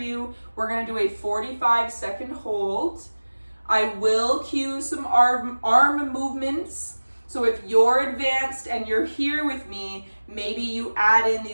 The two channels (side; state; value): both; inverted; correlation -1.00